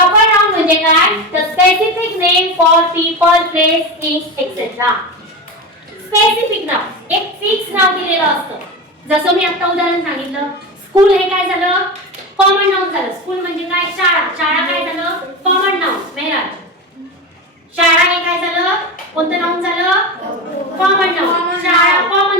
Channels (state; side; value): normal; both; correlation 0.22